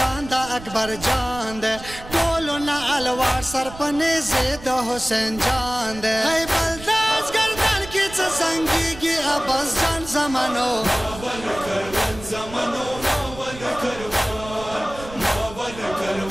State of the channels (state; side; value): noise; right; rumble, 15 dB below the sound